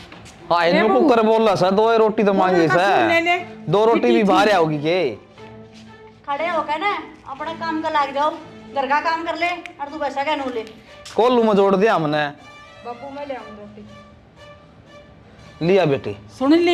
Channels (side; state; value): both; identical; correlation 1.00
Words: हाँ इनको कुकर बोल रहा सर 2 रोटी तो मांगी ले ले। सर 2 रोटी भी बाहर आओगी के खड़े होकर ना अपना काम का लाग जाओ, घर का काम कर ले और तू पैसा क्या नू ले। कोल्लू में जोड़ दिया हमने। बाबू मैं ले आऊँ रोटी। लिया बेटी सुन